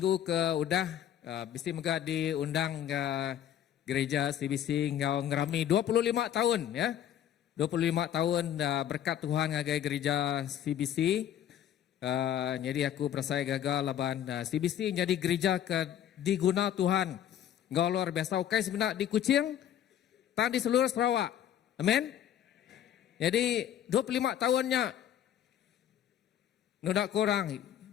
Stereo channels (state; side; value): quieter; right; 10.5 dB